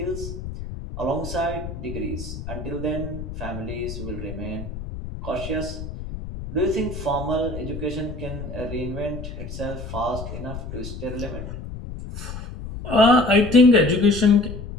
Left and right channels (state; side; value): noise; left; rumble, 9 dB below the sound